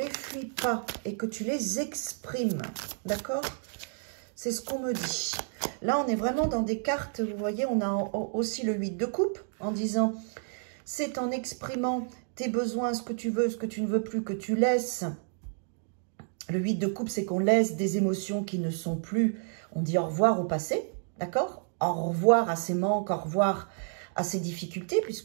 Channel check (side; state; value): left; silent; digital silence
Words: fuis pas et que tu les exprimes. D'accord? C'est ce qu'on me dit. Là, on est vraiment dans des cartes, vous voyez, on a aussi le 8 de coupe en disant, c'est en exprimant tes besoins, ce que tu veux, ce que tu ne veux plus, que tu laisses. Le 8 de coupe, c'est qu'on laisse des émotions qui ne sont plus. On dit au revoir au passé, d'accord? Au revoir à ces manques, au revoir à ces difficultés,